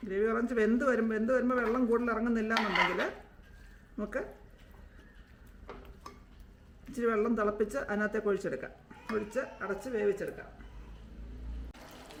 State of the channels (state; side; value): identical; both; correlation 1.00